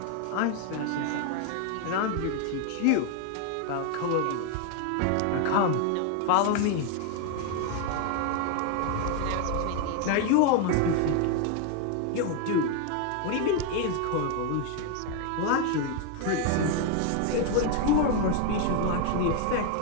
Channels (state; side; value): different; both; correlation 0.01